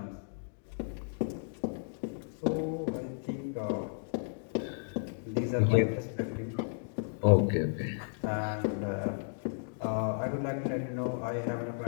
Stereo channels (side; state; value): right; silent; digital silence